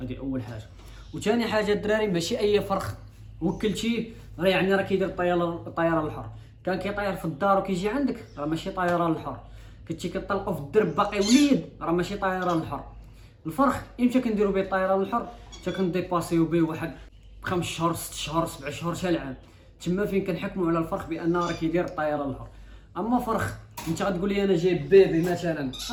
اول حاجه. وثاني حاجه الدراري ماشي اي فرخ وكلتيه راه يعني راه كيدير الطيران الحر. كان كيطير في الدار وكيجي عندك راه ماشي طيران الحر. كنتي كطلقوا في الدرب باقي وليد راه ماشي طيران الحر. الفرخ امتى كنديروا به الطيران الحر؟ حتى كنديباسيو به واحد 5 شهور 6 شهور 7 شهور حتى العام. تما فين كنحكموا على الفرخ بانه راه كيدير الطيران الحر. اما فرخ انت غتقول لي انا جايب بيبي مثلا،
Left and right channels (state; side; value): identical; both; correlation 1.00